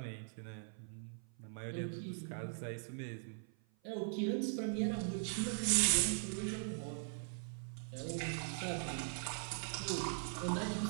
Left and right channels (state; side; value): silent; left; 50 dB below the other